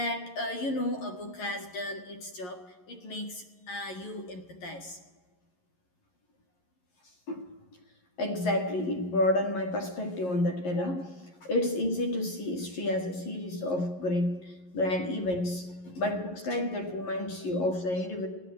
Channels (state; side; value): late; right; 11 ms